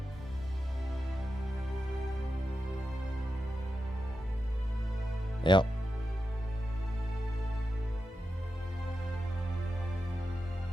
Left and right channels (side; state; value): both; normal; correlation 0.90